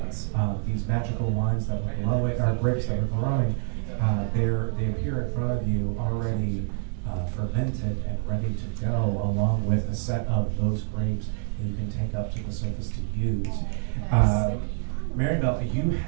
these magical wines that were glowing, or grapes that were growing. They appear in front of you already fermented and ready to go, along with a set of those grapes that you can take up to the surface to use. Maribel, you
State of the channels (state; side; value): silent; left; 60 dB below the other